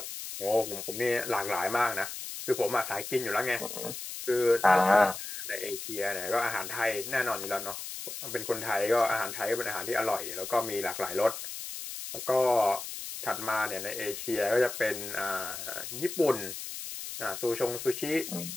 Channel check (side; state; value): left; noise; hiss, 8 dB below the sound